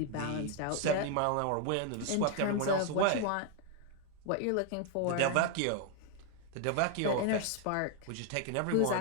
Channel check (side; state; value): both; different; correlation 0.00